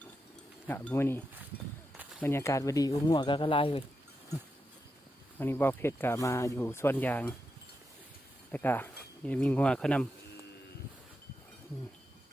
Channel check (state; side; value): normal; both; correlation 0.86